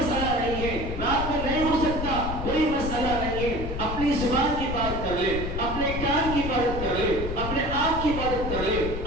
نہیں ہے، رات میں نہیں ہو سکتا، کوئی مسئلہ نہیں ہے، اپنی زبان کی بات کر لے، اپنے کان کی عبادت کر لے، اپنے آنکھ کی عبادت کر لے،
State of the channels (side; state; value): left; noise; rumble, 6 dB below the sound